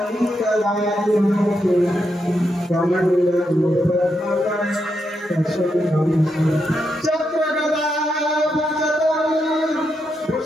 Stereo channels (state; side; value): normal; both; correlation 0.83